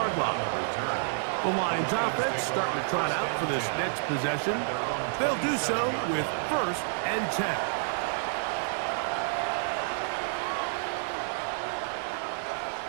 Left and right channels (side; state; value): left; silent; 58 dB below the other